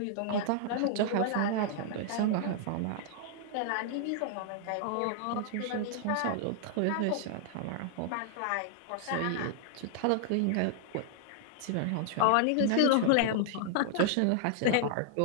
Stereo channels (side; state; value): both; different; correlation -0.01